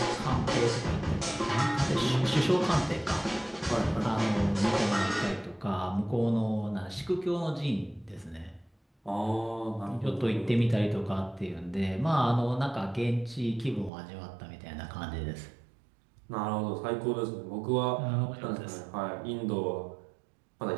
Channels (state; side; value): drops out; left; at 13.9 s